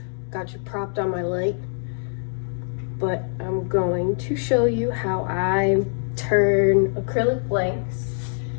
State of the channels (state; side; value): silent; right; digital silence